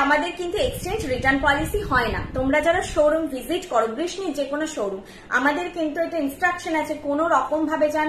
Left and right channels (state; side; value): identical; both; correlation 1.00